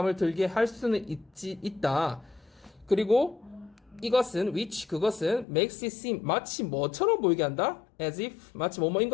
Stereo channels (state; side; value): drops out; right; at 5.5 s